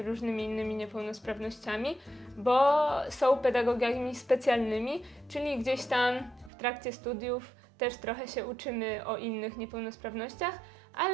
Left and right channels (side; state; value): left; drops out; at 6.5 s